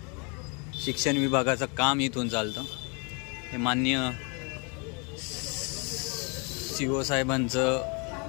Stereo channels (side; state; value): right; quieter; 33.6 dB